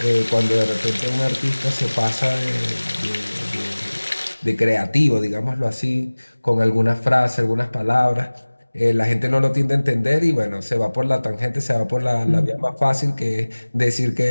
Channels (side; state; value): both; inverted; correlation -1.00